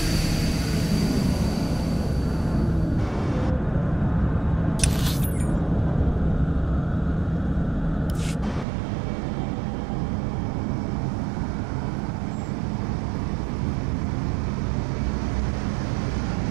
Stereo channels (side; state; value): left; drops out; at 8.7 s